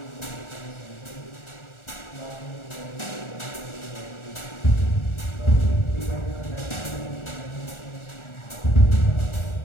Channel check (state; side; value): late; right; 1.4 ms